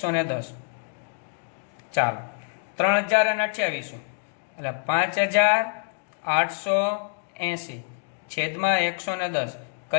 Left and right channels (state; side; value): silent; right; digital silence